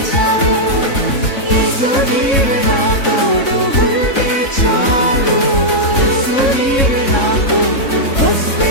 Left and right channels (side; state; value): right; late; 3.7 ms